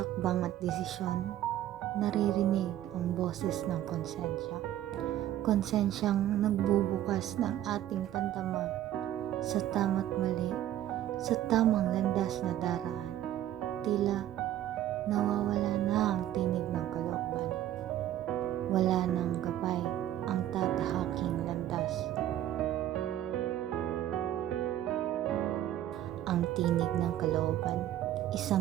at desisyon, naririnig ang boses ng konsensya. Konsensyang nagbubukas ng ating pandama sa tama't mali, sa tamang landas na daraan. Tila nawawala na ang tinig ng kalooban. Wala nang gabay ang tatahaking landas. Ang tinig ng kalooban,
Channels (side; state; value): left; quieter; 12.4 dB